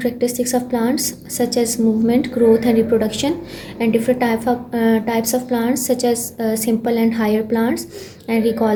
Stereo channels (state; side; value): identical; both; correlation 1.00